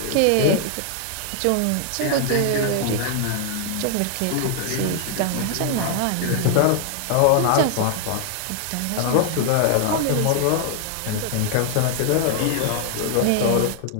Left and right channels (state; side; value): different; both; correlation 0.00